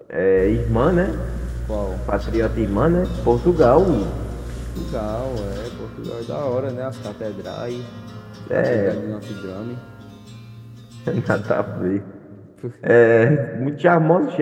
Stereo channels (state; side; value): identical; both; correlation 1.00